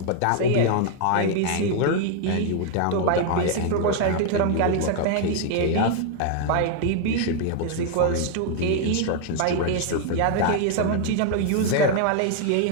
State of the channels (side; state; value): both; different; correlation 0.00